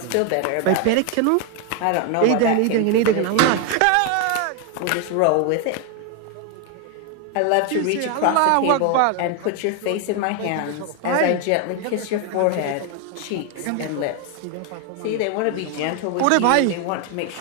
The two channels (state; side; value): different; both; correlation 0.01